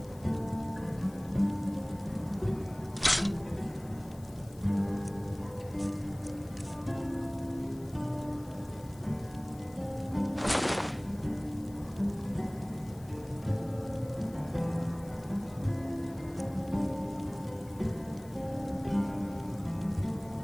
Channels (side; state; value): left; noise; hiss, 23 dB below the sound